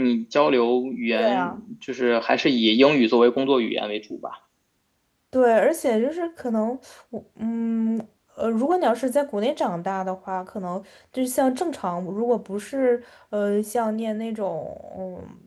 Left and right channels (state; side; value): identical; both; correlation 1.00